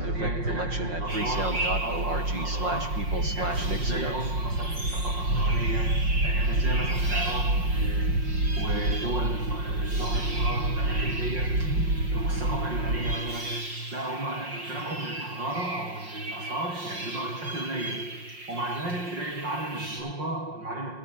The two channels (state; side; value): late; left; 5.6 ms